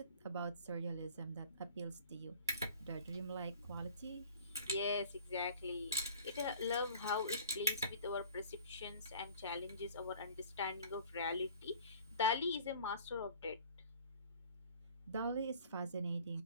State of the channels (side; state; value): both; inverted; correlation -0.48